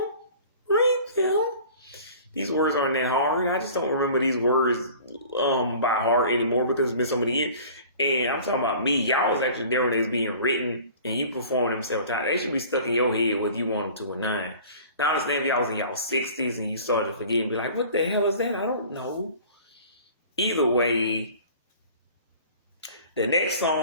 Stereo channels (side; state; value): both; inverted; correlation -0.45